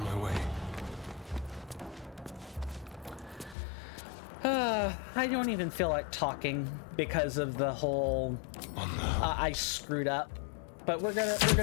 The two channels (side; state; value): right; drops out; at 3.6 s